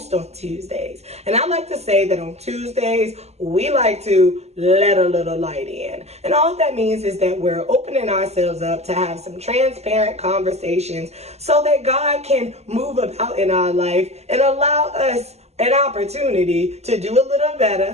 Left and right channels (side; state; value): left; late; 0.31 ms